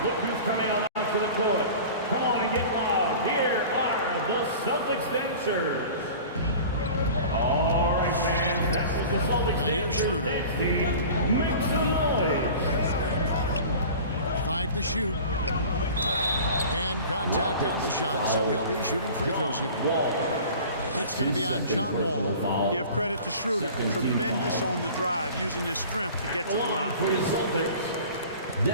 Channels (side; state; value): both; inverted; correlation -0.40